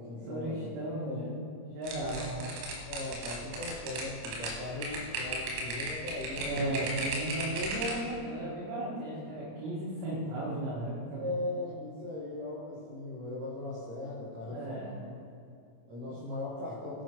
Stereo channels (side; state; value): left; late; 26 ms